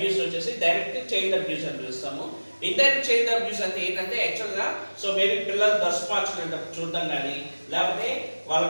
వచ్చేసి డైరెక్ట్ చైల్డ్ అబ్యూస్ అని పిలుస్తాము. ఇండైరెక్ట్ చైల్డ్ అబ్యూస్ అంటే ఏంటంటే యాక్చువల్గా సో మేబీ పిల్లలు డ్రెస్ మార్చుకునేటప్పుడు చూడడం కానీ లేకపోతే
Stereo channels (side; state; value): both; inverted; correlation -1.00